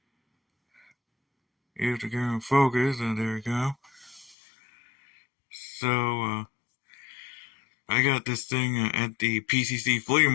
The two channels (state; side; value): drops out; right; at 4.4 s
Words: You have to go and focus, and there we go. So, I got this thing at the PCC Flea